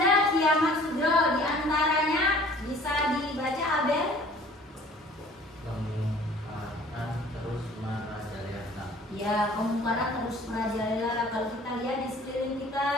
kiamat sugro diantaranya bisa dibaca Abel. Kemungkaran terus merajalela. Ya, kemungkaran terus merajalela. Kalau kita lihat di sekeliling kita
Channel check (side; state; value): both; normal; correlation 0.51